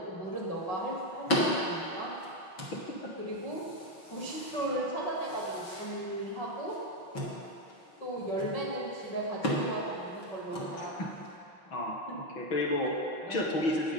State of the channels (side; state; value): right; late; 6.0 ms